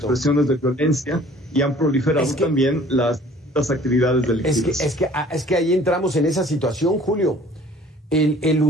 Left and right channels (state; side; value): normal; both; correlation 0.52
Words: de violencia y han proliferado también las actividades delictivas. Es que ahí entramos en esa situación, Julio. El